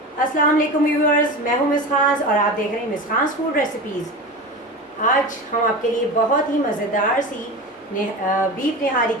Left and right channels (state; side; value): normal; both; correlation 0.28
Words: अस्सलाम वालेकुम व्यूअर्स, मैं हूँ मिस खान और आप देख रहे हैं मिस खान फूड रेसिपीज़। आज हम आपके लिए बहुत ही मज़ेदार सी बीफ निहारी